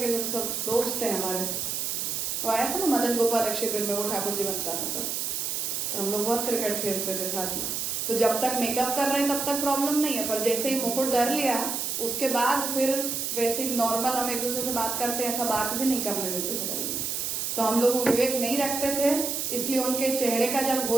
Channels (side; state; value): right; noise; hiss, 2 dB below the sound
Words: जैसे सब दोस्त थे हमारे। वो आया था ना मदन गोपाल शिविर में, वो ठाकुर जी बनता था तब, तो हम लोग बहुत क्रिकेट खेलते थे साथ में। तो जब तक मेकअप कर रहे हैं तब तक प्रॉब्लम नहीं है, पर जैसे ही मुकुट धर लिया उसके बाद फिर वैसे नॉर्मल हम एक दूसरे से बात करते हैं, ऐसा बात भी नहीं करने देते थे। तो हम लोग विवेक नहीं रखते थे, इसलिए उनके चेहरे का जब